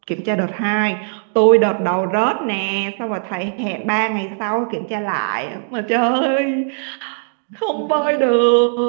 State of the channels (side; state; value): left; silent; digital silence